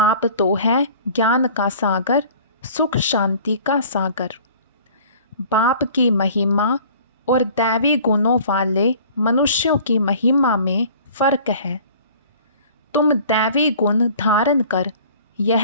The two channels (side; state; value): both; inverted; correlation -0.48